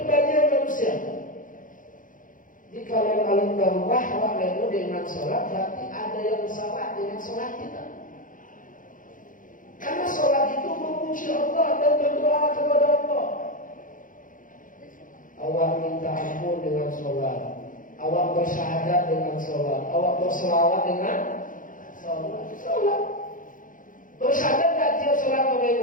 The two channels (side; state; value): right; late; 0.39 ms